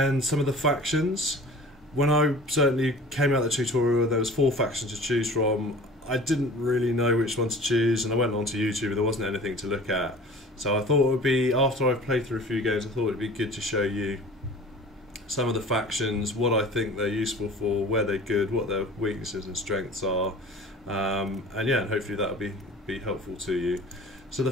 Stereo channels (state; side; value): normal; both; correlation 0.43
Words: some of the factions. When I certainly came out of the tutorial there was 4 factions to choose from. I didn't really know which one to choose and I went onto YouTube and there wasn't anything to look at. So I thought it would be, after I've played through a few games, I thought it would be good to show you some of the factions, what I think they're useful for, where they're good, what their weaknesses and strengths are, and yeah, and hopefully that'll be helpful to you. So the